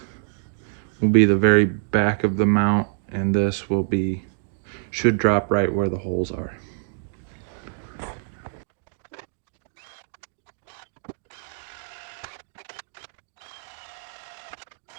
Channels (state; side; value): silent; left; digital silence